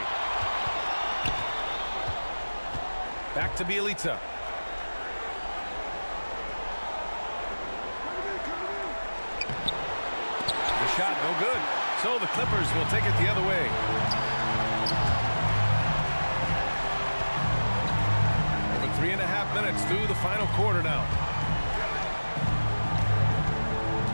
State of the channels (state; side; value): inverted; both; correlation -1.00